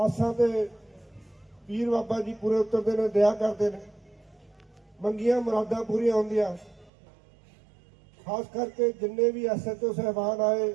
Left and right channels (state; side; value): drops out; left; at 6.9 s